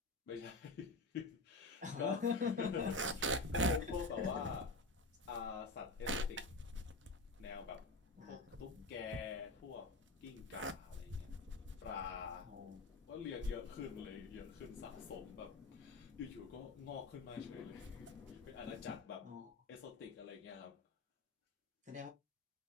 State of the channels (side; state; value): right; quieter; 3.2 dB